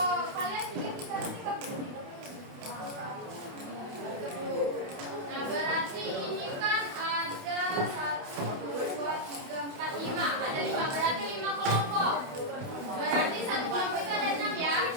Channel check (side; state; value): left; late; 28 ms